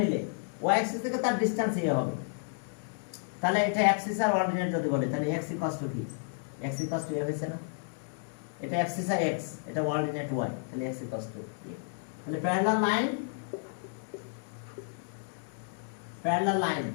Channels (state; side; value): silent; right; digital silence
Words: নিলে ওয়াই অ্যাক্সিস থেকে তার ডিসটেন্স হবে। তাহলে এটা অ্যাক্সিস আর অর্ডিনেট যদি বলে, তাহলে x ইকুয়ালস টু কি? x ইকুয়ালস টু a হইছে না? এটা অ্যাক্সিস আর x, এটা অর্ডিনেট y, তাহলে x ইকুয়ালস টু a। তাহলে parallel